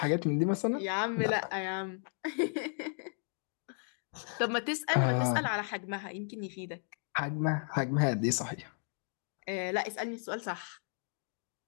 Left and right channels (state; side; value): silent; right; 55 dB below the other